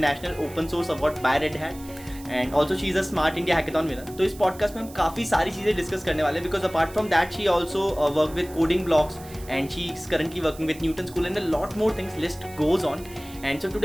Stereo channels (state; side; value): noise; right; hiss, 19 dB below the sound